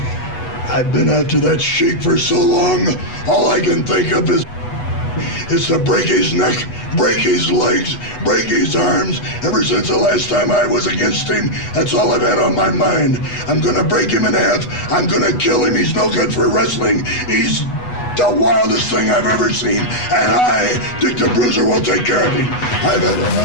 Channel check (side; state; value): right; late; 8.2 ms